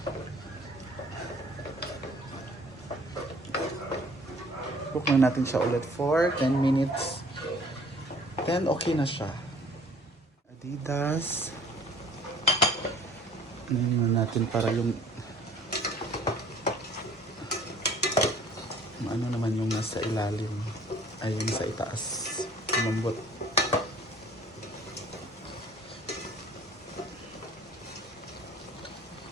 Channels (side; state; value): both; normal; correlation 0.54